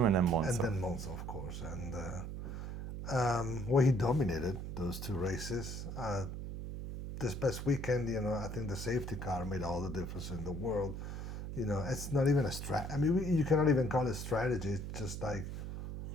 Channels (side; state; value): right; noise; hum, 6 dB below the sound